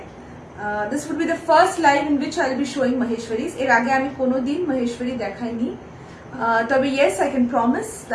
This would be the first live in which I'll be showing Maheshwaris. এর আগে আমি কোনোদিন মহেশ্বরী দেখাইনি। তবে yes, I can promise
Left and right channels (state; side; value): identical; both; correlation 1.00